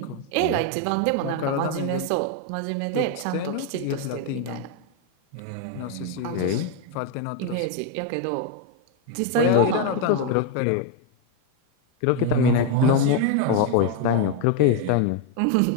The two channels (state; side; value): different; both; correlation 0.01